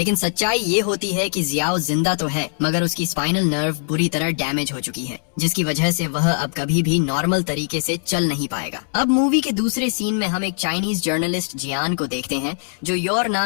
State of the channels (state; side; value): silent; right; 65 dB below the other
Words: सच्चाई ये होती है कि जियाओ जिंदा तो है, मगर उसकी स्पाइनल नर्व बुरी तरह डैमेज हो चुकी है, जिसकी वजह से वह अब कभी भी नॉर्मल तरीके से चल नहीं पाएगा। अब मूवी के दूसरे सीन में हम एक चाइनीज जर्नलिस्ट जियान को देखते हैं जो योर